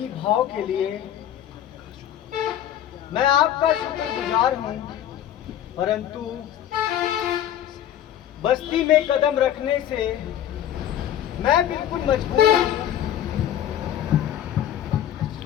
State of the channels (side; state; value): right; quieter; 10.9 dB